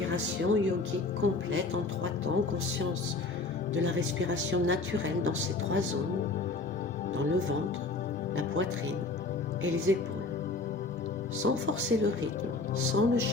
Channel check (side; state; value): right; quieter; 3.5 dB